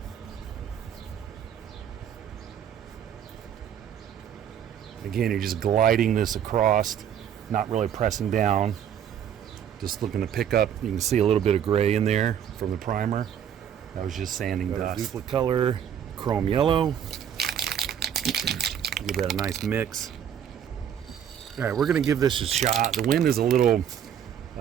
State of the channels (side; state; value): left; quieter; 9.0 dB